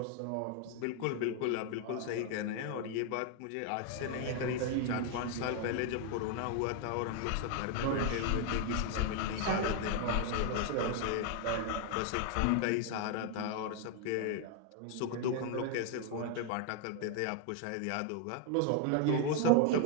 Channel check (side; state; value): both; different; correlation 0.00